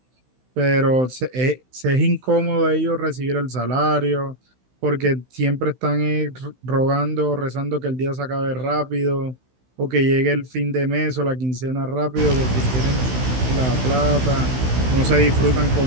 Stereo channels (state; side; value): late; left; 16 ms